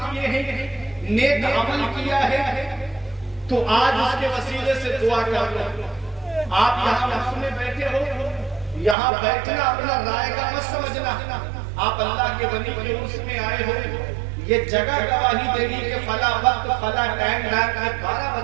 کیے ہیں، نیک عمل کیا ہے، تو آج اس کے وسیلے سے دعا کر لو۔ آپ یہاں محفل میں بیٹھے ہو، یہاں بیٹھنا اپنا رائے گا مت سمجھنا۔ آپ اللہ کے ولی کے عرس میں آئے ہو، یہ جگہ گواہی دے گی کہ فلاں وقت فلاں ٹائم رات کے 12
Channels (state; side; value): drops out; left; at 9.0 s